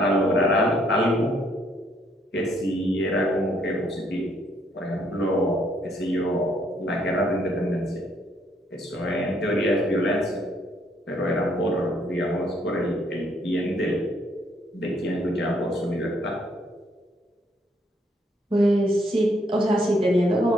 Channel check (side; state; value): both; normal; correlation 0.69